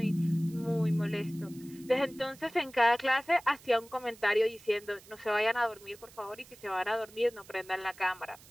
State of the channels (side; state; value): right; noise; hiss, 22 dB below the sound